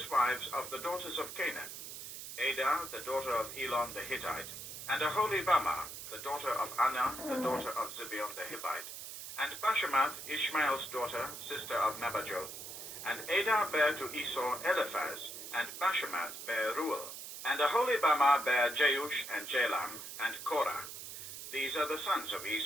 wives of the daughters of Canaan, Adah, the daughter of Elon the Hittite, and Aholibamah, the daughter of Anah, the daughter of Zibeon the Hivite, and Bashemath, Ishmael's daughter, sister of Nebajoth. And Adah bare to Esau Eliphaz, and Bashemath bare Reuel, and Aholibamah bare Jeush and Jalam, and Korah. These are the sons of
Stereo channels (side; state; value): right; noise; hiss, 10 dB below the sound